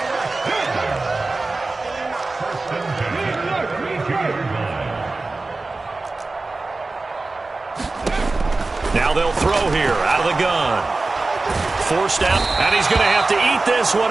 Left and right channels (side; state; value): left; quieter; 3.4 dB